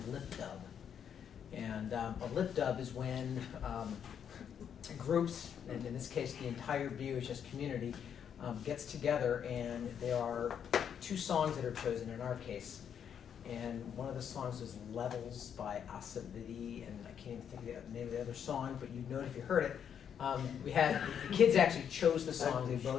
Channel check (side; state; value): right; quieter; 8.2 dB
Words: lip dub. And a lip dub is when groups, and in this case the entire BUHS community, gets together, and there are 2 songs that are chosen in our case. And one of the songs is Levels by Asavidi, and I can't even think of the name of the other song, but you'd know it if you heard it. We had, the kids actually chose the songs, they